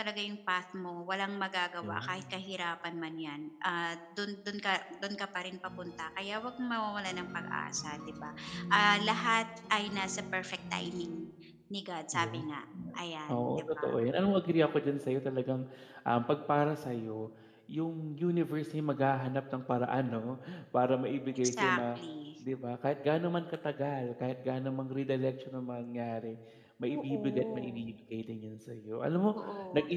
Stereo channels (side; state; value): both; identical; correlation 1.00